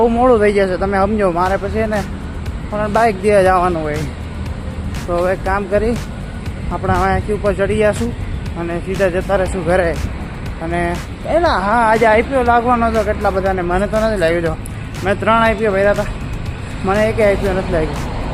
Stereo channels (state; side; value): identical; both; correlation 1.00